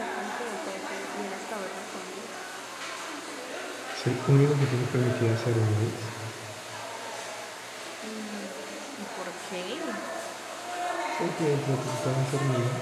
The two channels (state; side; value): identical; both; correlation 1.00